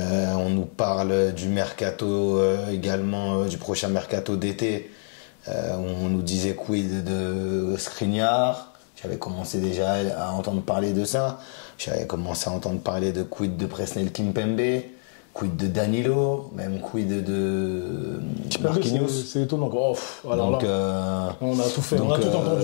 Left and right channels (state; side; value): silent; right; digital silence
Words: nous parle du mercato également, du prochain mercato d'été. On nous disait quid de Skriniar. J'avais commencé déjà à entendre parler de ça. J'avais commencé à entendre parler de quid de Presnel Kimpembe, quid de Danilo, même quid de Marquinhos. C'est étonnant. Alors donc, on a tout fait, on a tout